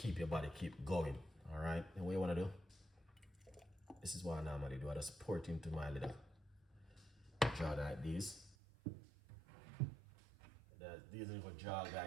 your body keep going. All right, and what you want to do? This is what I normally do. I just pour it into my little jar like this. These little jar,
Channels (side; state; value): left; drops out; at 8.6 s